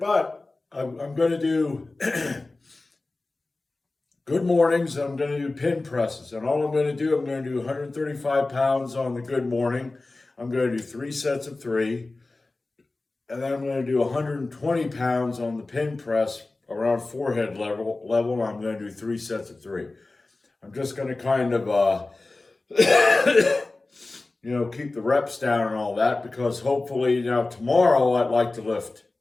I'm going to do good mornings. I'm going to do pin presses, and all I'm going to do, I'm going to do 135 pounds on the good morning. I'm going to do 3 sets of 3, and then I'm going to do 120 pounds on the pin press around forehead level. I'm going to do 3 sets of 3. I'm just going to kind of keep the reps down and all that, because hopefully tomorrow I'd like to lift.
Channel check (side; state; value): right; quieter; 3.2 dB